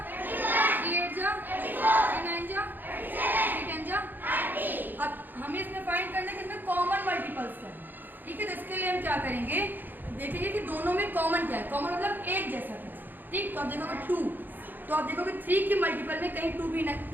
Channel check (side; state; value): left; late; 0.089 ms